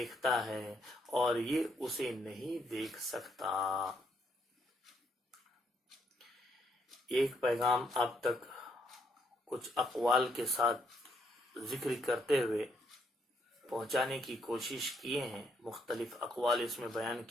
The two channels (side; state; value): both; normal; correlation 0.73